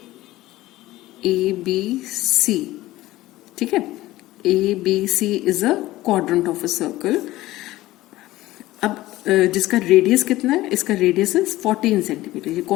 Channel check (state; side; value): quieter; right; 16.9 dB